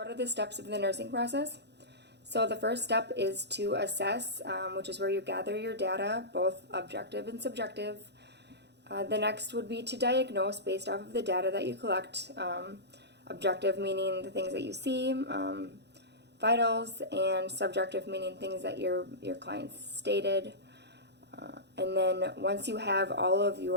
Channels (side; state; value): left; late; 0.49 ms